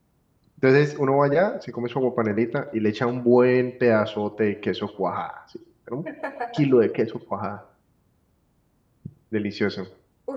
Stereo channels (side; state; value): both; identical; correlation 1.00